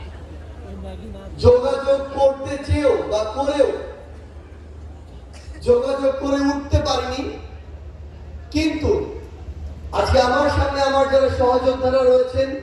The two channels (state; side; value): identical; both; correlation 1.00